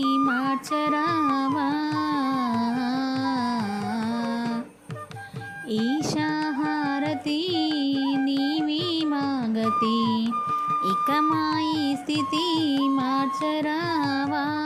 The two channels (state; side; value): identical; both; correlation 1.00